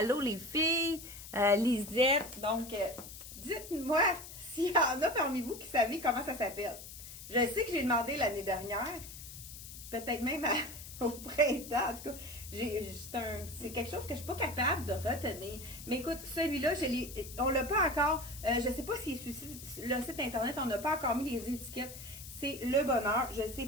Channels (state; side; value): noise; left; hiss, 13 dB below the sound